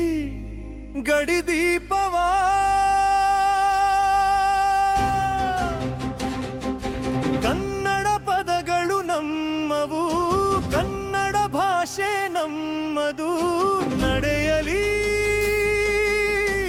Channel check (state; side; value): identical; both; correlation 1.00